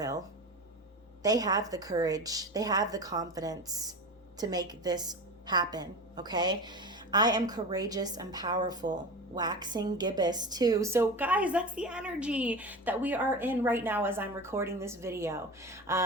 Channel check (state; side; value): normal; both; correlation 0.29